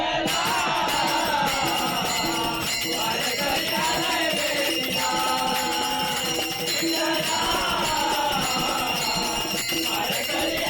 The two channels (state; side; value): identical; both; correlation 1.00